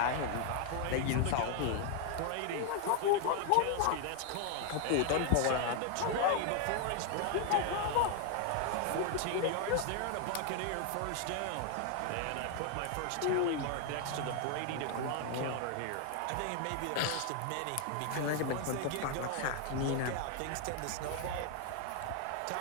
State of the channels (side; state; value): both; different; correlation 0.00